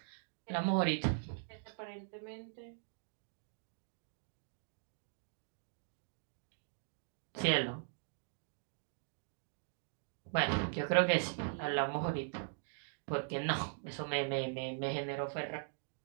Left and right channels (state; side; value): silent; left; digital silence